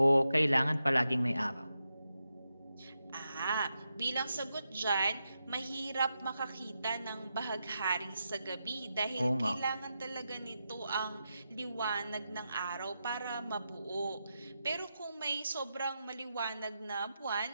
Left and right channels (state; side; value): inverted; both; correlation -0.87